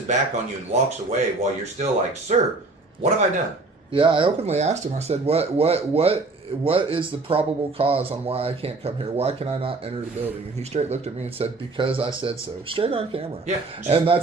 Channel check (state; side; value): quieter; left; 3.4 dB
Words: back on you and walks away while you're still like, sir, what have I done? Yeah, I openly asked him. I said, "What is the probable cause on why I can't come here? Why can I not enter the building?" And he straight looked at me and said, "Because I said so." Straight on camera. Yeah. And